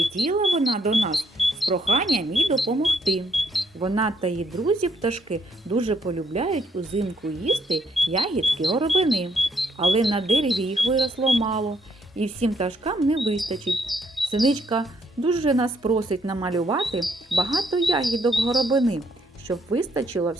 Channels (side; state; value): both; normal; correlation 0.70